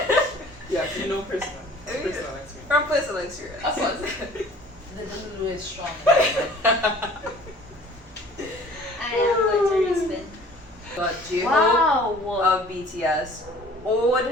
Yes, you know personal experience. From personal experience. Of course. The Lulu is strong. I am going to respin. But J-Hope Wow. of BTS,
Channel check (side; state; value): both; normal; correlation 0.49